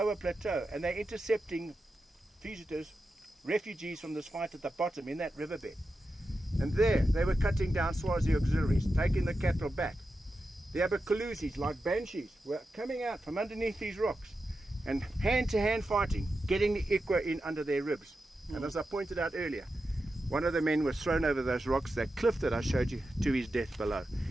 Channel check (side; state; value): both; normal; correlation 0.90